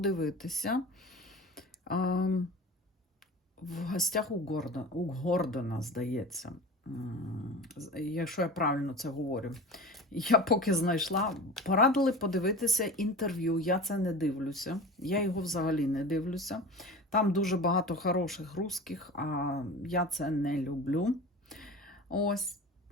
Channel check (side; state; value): both; normal; correlation 0.33